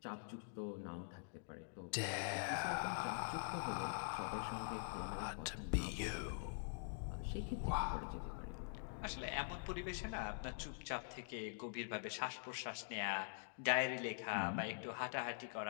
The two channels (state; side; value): silent; right; digital silence